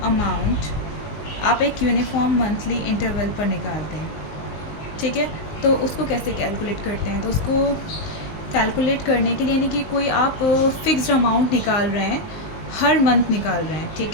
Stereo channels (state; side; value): late; right; 19 ms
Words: अमाउंट आप एक यूनिफॉर्म मंथली इंटरवल पर निकालते हैं, ठीक है। तो उसको कैसे कैलकुलेट करते हैं? तो उसको कैलकुलेट करने के लिए यानी कि कोई आप फिक्स्ड अमाउंट निकाल रहे हैं, हर मंथ निकाल रहे हैं,